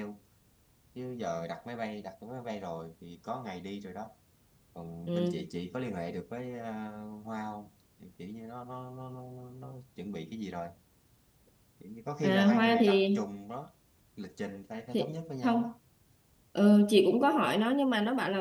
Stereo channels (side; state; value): both; identical; correlation 1.00